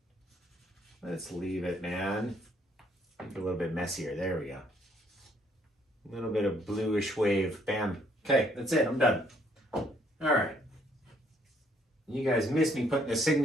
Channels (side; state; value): both; normal; correlation 0.67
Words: Let's leave it, man. Make it a little bit messier. There we go. A little bit of bluish wave. Bam. Okay, that's it. I'm done. All right. You guys missed me putting the